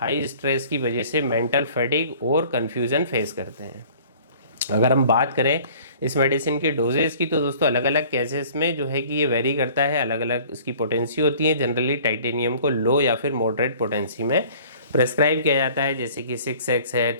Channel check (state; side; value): inverted; both; correlation -0.50